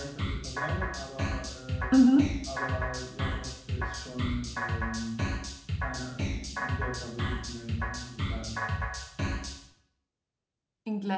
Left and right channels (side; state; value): both; identical; correlation 1.00